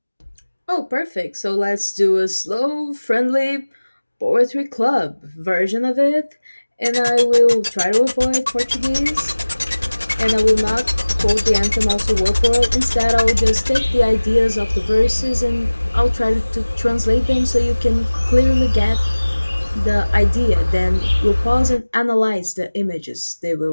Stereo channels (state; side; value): inverted; both; correlation -1.00